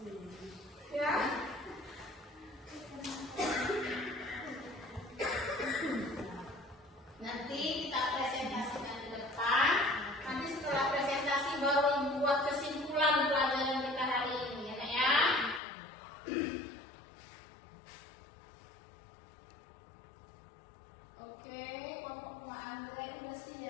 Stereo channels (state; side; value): drops out; right; at 15.6 s